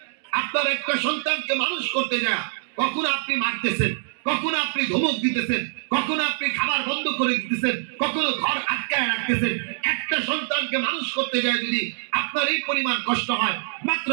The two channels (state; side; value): silent; left; digital silence